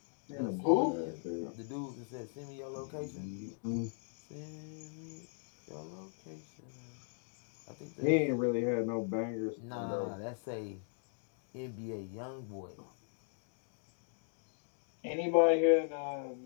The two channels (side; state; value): right; silent; digital silence